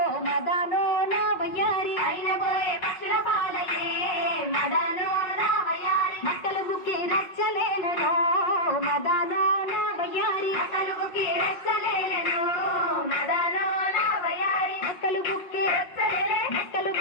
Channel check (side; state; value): right; late; 5.5 ms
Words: మదానో నా వయ్యారి అయిన పోయే పక్షుల పాలయే మదానో నా వయ్యారి మక్కలు బుక్కి రచ్చలేనో మదానో నా వయ్యారి మక్కలు బుక్కి రచ్చలేనో మదానో నా వయ్యారి మక్కలు బుక్కి రచ్చలేలే మక్కలు